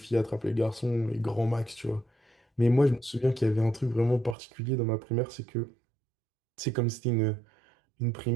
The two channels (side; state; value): left; drops out; at 4.4 s